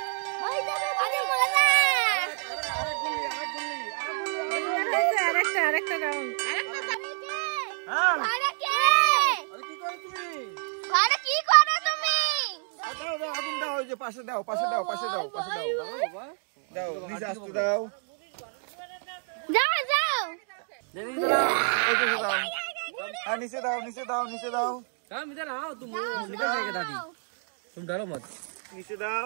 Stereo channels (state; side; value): silent; left; 56 dB below the other